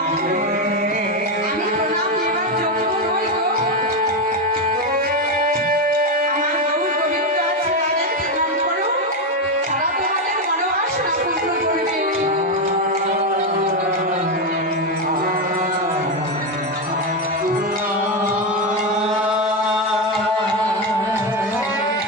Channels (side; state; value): both; normal; correlation 0.10